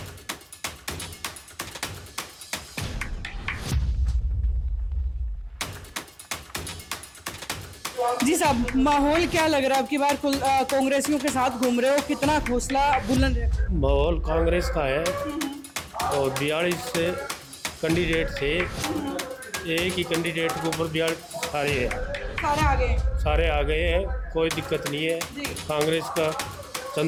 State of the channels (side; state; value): both; identical; correlation 1.00